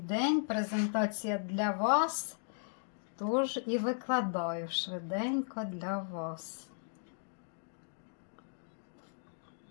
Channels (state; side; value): silent; right; digital silence